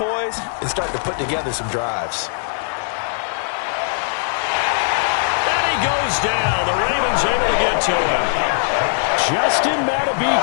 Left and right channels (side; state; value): right; silent; 60 dB below the other